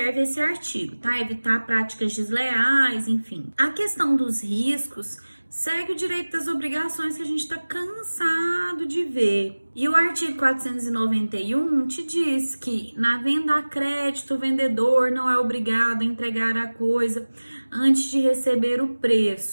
esse artigo, tá? Evitar práticas desleais, enfim. A questão dos riscos segue o direito das obrigações que a gente está cansado de ver. E o artigo 491 te diz que na venda a crédito, o vendedor não é obrigado a entregar a coisa antes de receber o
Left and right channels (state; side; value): inverted; both; correlation -1.00